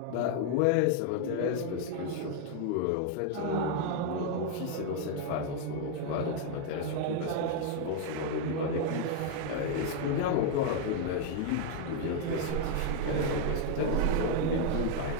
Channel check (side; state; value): both; different; correlation 0.00